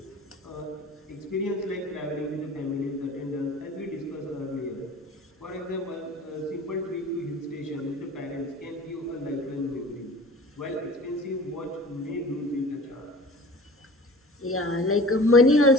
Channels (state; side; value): normal; both; correlation 0.42